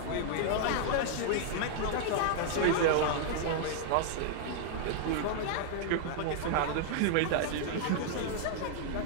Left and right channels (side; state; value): both; different; correlation -0.01